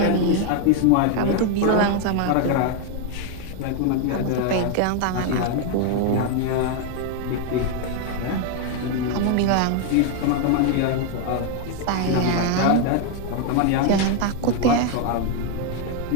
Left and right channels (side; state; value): both; different; correlation 0.01